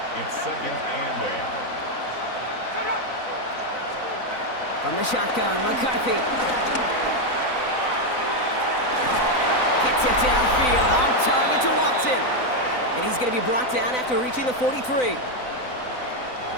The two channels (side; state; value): right; late; 4.0 ms